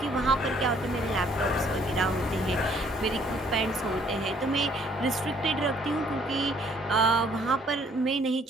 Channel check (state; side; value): normal; both; correlation 0.62